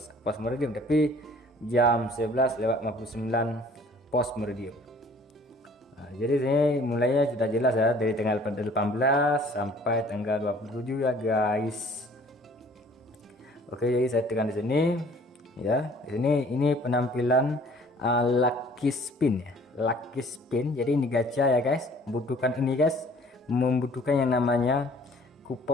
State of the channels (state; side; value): normal; both; correlation 0.54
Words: post meridium tapi jam 11:59 post meridium. Nah, jadi ini mulainya sudah jelas ya, dari tanggal 18 sampai tanggal 27 ya guys. Oke, jadi saya tekan di sini ya. Di sini ini penampilan lucky spin ya, lucky spin. Jadi ini gacha ya guys, membutuhkan ini guys, membutuhkan yang namanya